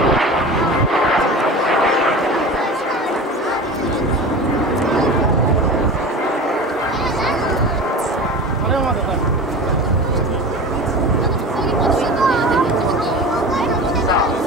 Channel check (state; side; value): normal; both; correlation 0.33